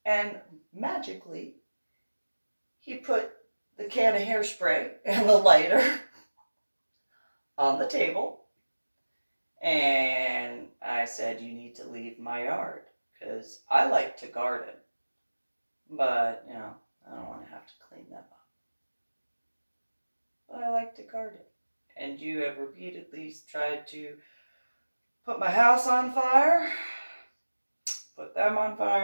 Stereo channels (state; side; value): inverted; both; correlation -1.00